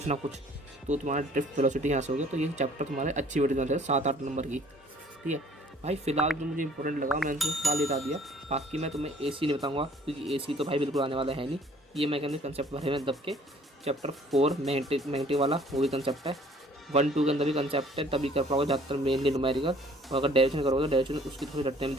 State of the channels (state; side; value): normal; both; correlation 0.56